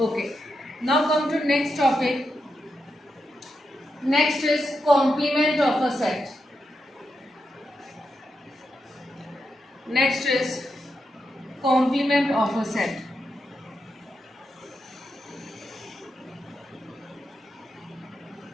Now come to next topic. Next is complement of a set. Next is complement of a set.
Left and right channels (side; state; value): both; normal; correlation 0.85